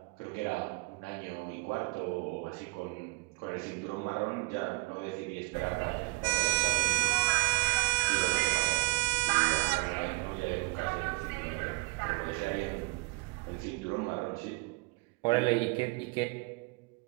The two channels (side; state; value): left; quieter; 29.8 dB